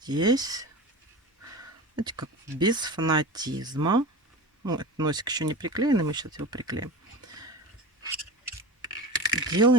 знаете, как без фанатизма. Ну, этот носик еще не приклеенный, мы сейчас его приклеим.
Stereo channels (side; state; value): both; normal; correlation 0.31